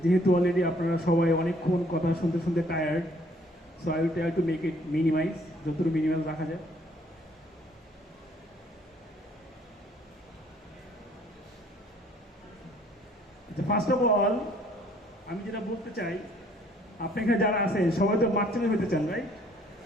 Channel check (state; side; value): normal; both; correlation 0.61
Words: যেহেতু অলরেডি আপনারা সবাই অনেকক্ষণ কথা শুনতে শুনতে tired, so I will try to make it minimise, যতটুকু মিনিমাইজ রাখা যায়। ফার্স্ট অফ অল আমি যেটা বলতে চাই, আপনি এখানে যারা আছেন সবাই তো মার্চেন্ট হইতে চান, রাইট?